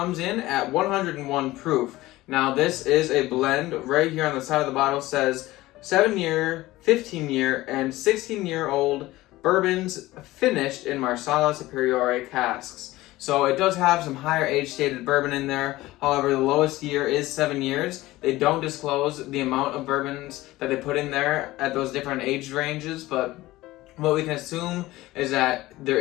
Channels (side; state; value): right; quieter; 17.9 dB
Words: in at 101 proof. Now, this is a blend. Right here on the side of the bottle says 7-year, 15-year, and 16-year-old bourbons finished in marsala superiore casks. So it does have some higher age stated bourbon in there. However, the lowest year is 7 years. They don't disclose the amount of bourbons that they put in there at those different age ranges, but what we can assume is that there